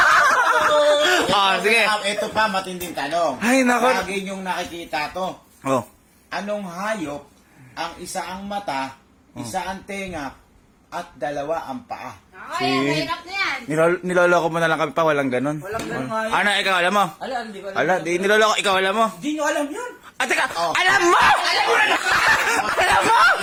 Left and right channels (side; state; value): both; identical; correlation 1.00